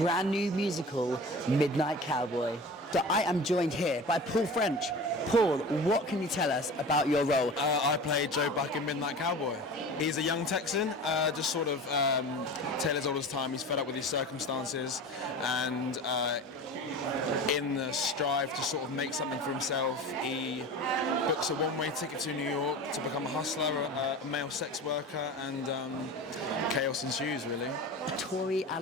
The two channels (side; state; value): both; normal; correlation 0.35